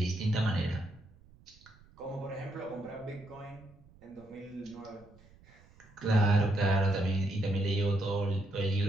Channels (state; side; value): noise; right; rumble, 26 dB below the sound